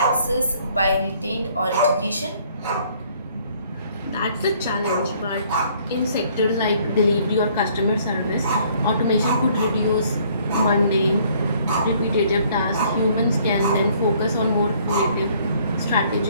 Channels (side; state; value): both; inverted; correlation -0.61